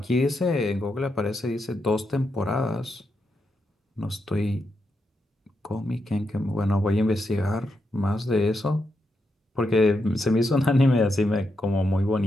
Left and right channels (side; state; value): both; normal; correlation 0.83